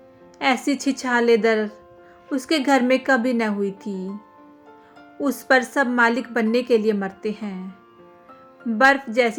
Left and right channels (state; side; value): identical; both; correlation 1.00